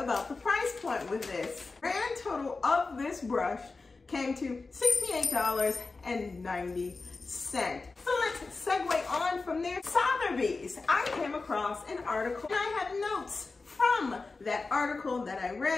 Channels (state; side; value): quieter; right; 3.9 dB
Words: the price point with this. Grand total of this brush came to $68.90. So let's segue on from there. Sotherbys. I came across an article and I have notes from that article that I